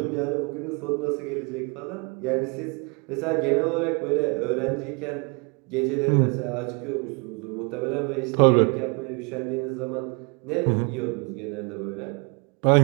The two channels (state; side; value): quieter; left; 31.8 dB